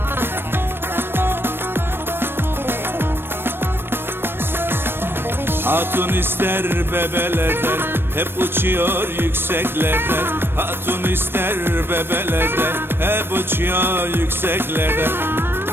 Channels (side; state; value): left; late; 0.10 ms